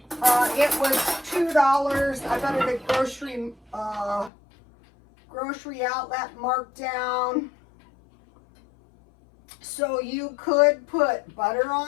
It was $2. I got it at grocery outlet marked down. So you could put butter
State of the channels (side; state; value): right; drops out; at 4.3 s